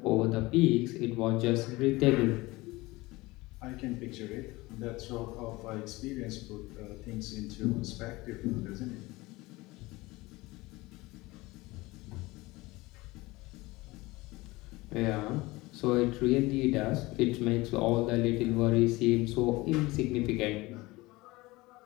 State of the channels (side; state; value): right; quieter; 21.1 dB